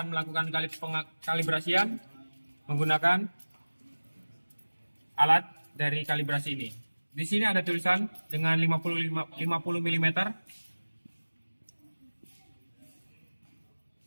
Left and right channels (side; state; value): both; inverted; correlation -1.00